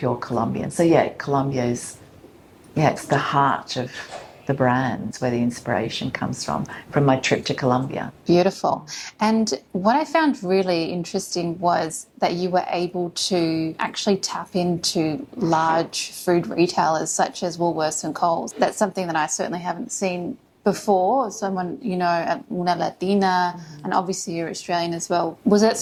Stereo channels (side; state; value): both; identical; correlation 1.00